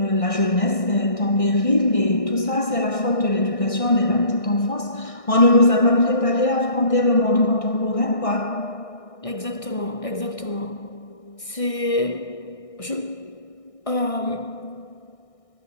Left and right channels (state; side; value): late; right; 1.6 ms